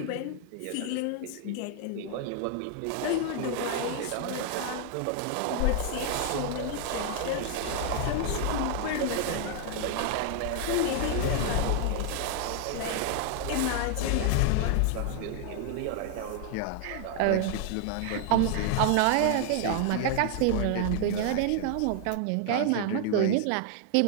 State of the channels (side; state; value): both; different; correlation 0.00